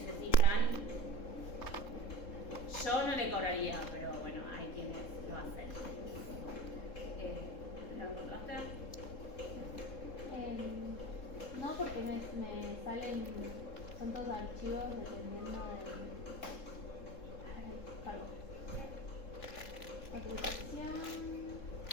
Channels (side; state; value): right; late; 3.7 ms